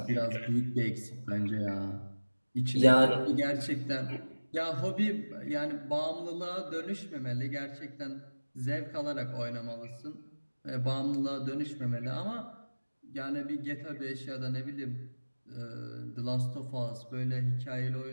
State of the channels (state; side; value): inverted; both; correlation -1.00